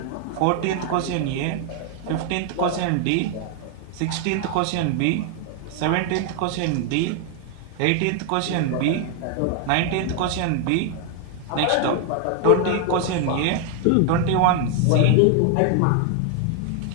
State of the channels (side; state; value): both; different; correlation 0.01